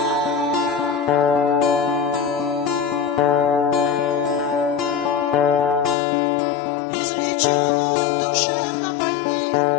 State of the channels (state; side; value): drops out; right; at 6.0 s